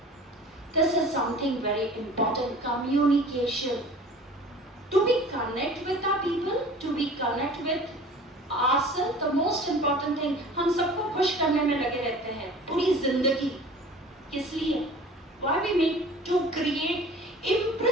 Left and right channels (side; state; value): both; normal; correlation 0.43